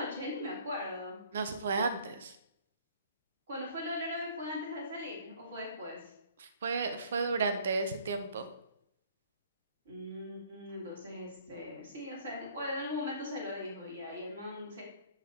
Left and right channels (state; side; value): inverted; both; correlation -0.56